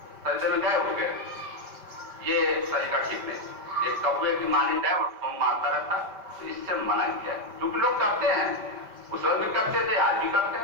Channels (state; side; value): late; left; 5.1 ms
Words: ہو گئے, یہ طریقہ ٹھیک نہیں. ایک کبے کی مانند ہے اور ٹھونگ مارتا رہتا, تو اس سے منع کیا ہے. کیونکہ لوگ کرتے ہیں, اس وقت بھی کرتے تھے, آج بھی کرتے